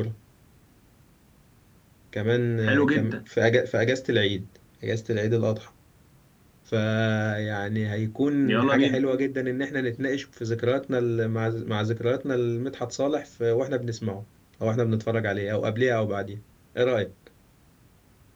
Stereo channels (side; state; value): both; identical; correlation 1.00